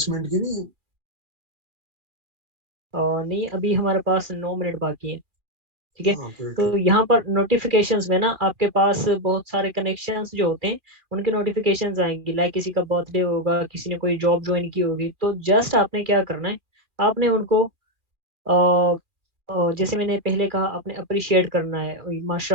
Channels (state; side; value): late; left; 2.4 ms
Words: मिनट की नहीं है? नहीं, अभी हमारे पास 9 मिनट बाकी है, ठीक है। ओके तो यहाँ पर नोटिफिकेशंस में ना आपके पास बहुत सारे कनेक्शंस जो होते हैं, उनके नोटिफिकेशंस आएंगी, लाइक किसी का बर्थडे होगा, किसी ने कोई जॉब ज्वाइन की होगी, तो जस्ट आपने क्या करना है, आपने उनको जैसे मैंने पहले कहा, आपने अप्रिशिएट करना है,